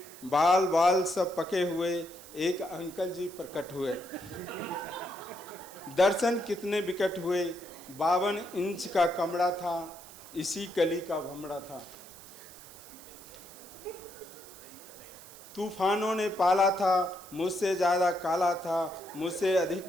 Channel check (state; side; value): noise; right; hiss, 18 dB below the sound